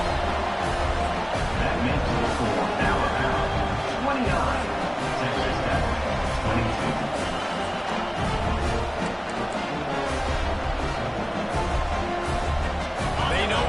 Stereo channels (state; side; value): identical; both; correlation 1.00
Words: That makes the score now around 29. Texas Tech, 22. They know